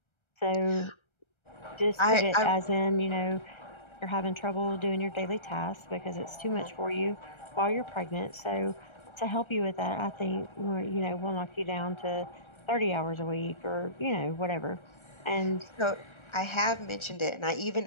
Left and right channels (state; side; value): late; right; 1.3 ms